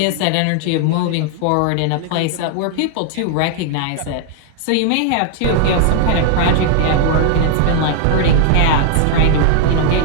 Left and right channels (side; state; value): both; different; correlation 0.00